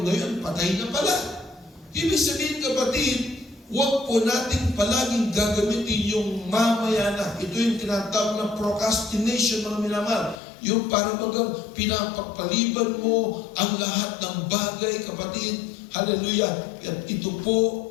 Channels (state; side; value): drops out; right; at 10.4 s